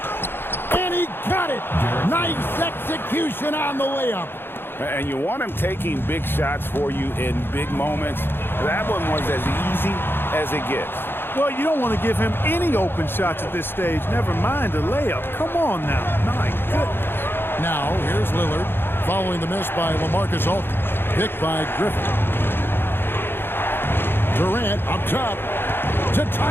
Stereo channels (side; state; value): right; late; 0.10 ms